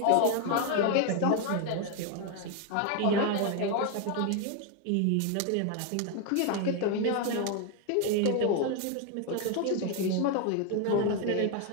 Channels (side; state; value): both; different; correlation 0.01